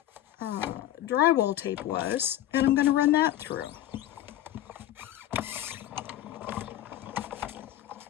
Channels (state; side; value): quieter; right; 13.0 dB